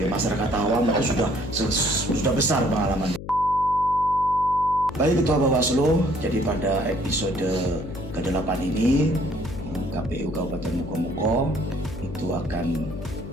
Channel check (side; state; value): left; noise; hum, 11 dB below the sound